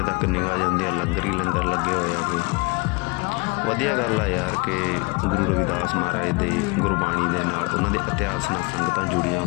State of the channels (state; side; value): quieter; right; 28.1 dB